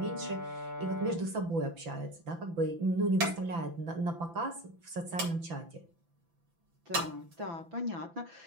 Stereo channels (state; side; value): late; left; 5.9 ms